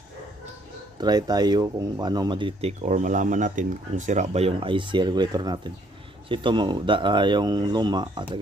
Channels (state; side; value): normal; both; correlation 0.66